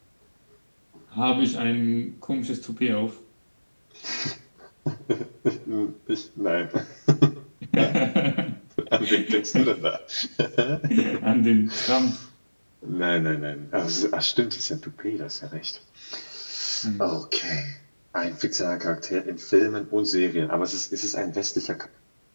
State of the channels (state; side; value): inverted; both; correlation -1.00